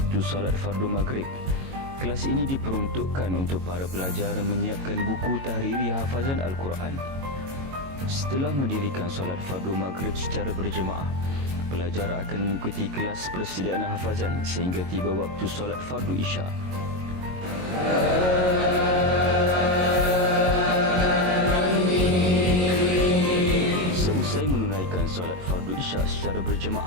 solat fardu maghrib, kelas ini diperuntukkan untuk para pelajar menyiapkan buku tahriri hafazan Al-Quran. Setelah mendirikan solat fardu maghrib secara berjemaah, pelajar akan mengikuti kelas persediaan hafazan sehingga tiba waktu solat fardu isya. Seusai menunaikan solat fardu isya secara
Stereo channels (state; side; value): late; left; 22 ms